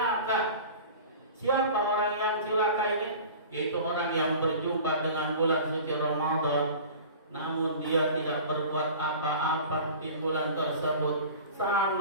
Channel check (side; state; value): both; inverted; correlation -0.39